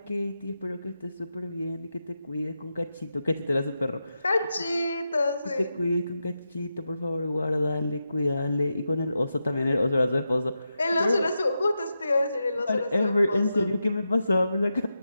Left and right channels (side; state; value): both; inverted; correlation -0.89